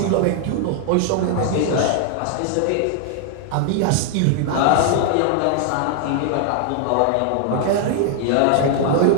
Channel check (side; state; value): both; different; correlation -0.01